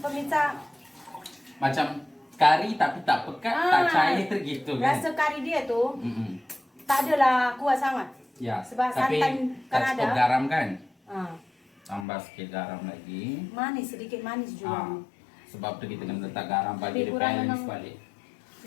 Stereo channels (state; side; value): drops out; right; at 12.1 s